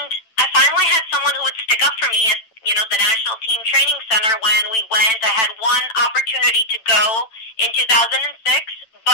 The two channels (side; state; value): right; late; 8.9 ms